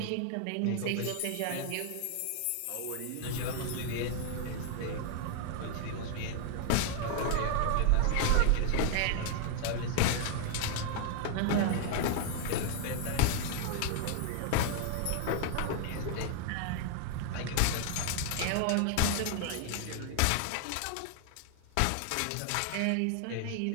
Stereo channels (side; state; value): both; different; correlation 0.00